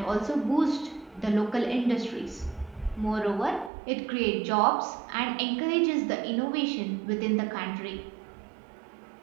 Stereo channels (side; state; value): left; drops out; at 3.7 s